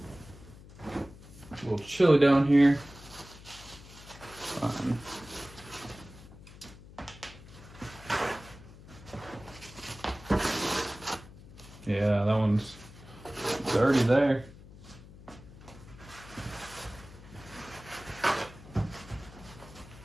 A little chilly down here. Yeah, that one's already there.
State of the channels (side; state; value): left; noise; hum, 19 dB below the sound